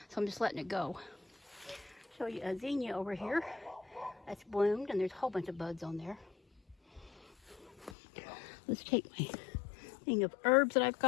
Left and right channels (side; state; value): right; drops out; at 8.0 s